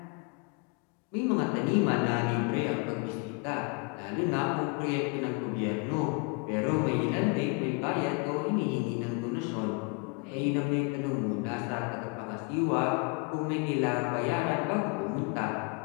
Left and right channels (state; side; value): quieter; right; 30.4 dB